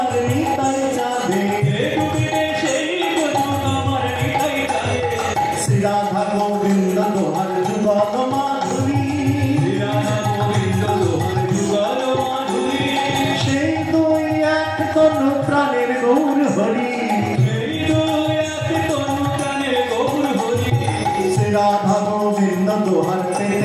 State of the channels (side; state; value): both; identical; correlation 1.00